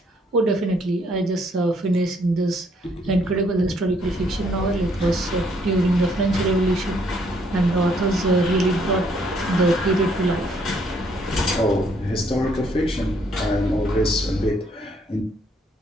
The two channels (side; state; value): both; normal; correlation 0.68